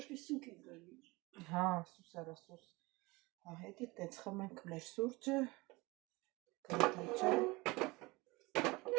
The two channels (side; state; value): left; quieter; 23.4 dB